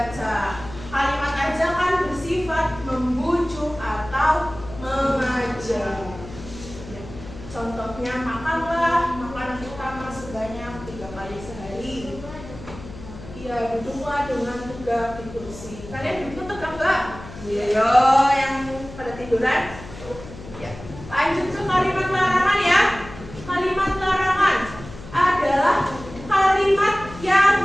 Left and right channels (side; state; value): left; noise; hum, 15 dB below the sound